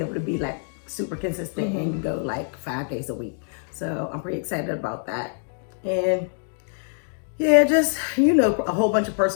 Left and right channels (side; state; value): right; silent; 62 dB below the other